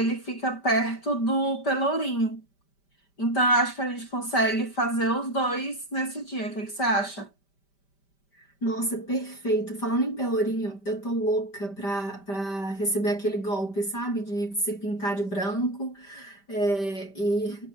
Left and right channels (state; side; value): late; right; 5.1 ms